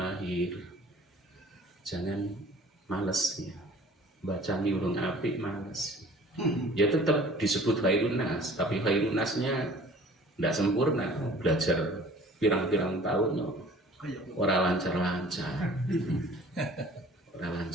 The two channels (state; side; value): normal; both; correlation 0.49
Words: Jangan males ya. Baca urung apik males. Ya tetap disebut khairun nas, tapi khairun nasnya tidak sempurna. Belajar pirang-pirang tahun ora lancar-lancar. Ora